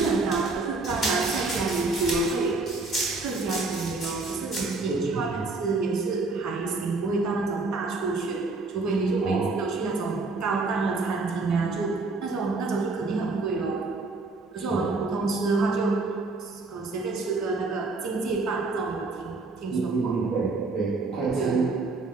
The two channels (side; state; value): left; quieter; 3.6 dB